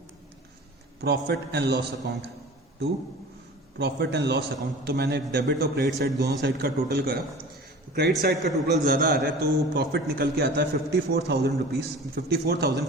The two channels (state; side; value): normal; both; correlation 0.40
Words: profit and loss account, to profit and loss account. तो मैंने डेबिट और क्रेडिट साइड दोनों साइड का टोटल करा, क्रेडिट साइड का टोटल ज्यादा आ रहा है तो प्रॉफिट निकल के आता है 54,000 रुपीज,